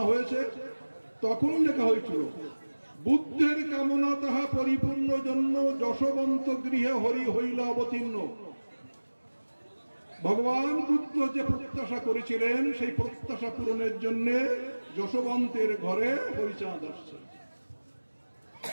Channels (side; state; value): both; inverted; correlation -1.00